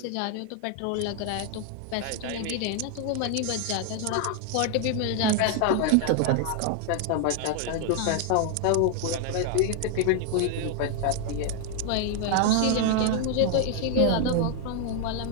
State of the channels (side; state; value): both; different; correlation 0.00